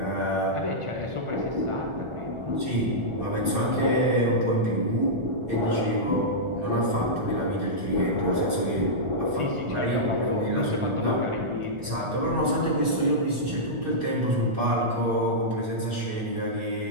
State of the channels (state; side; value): late; left; 1.4 ms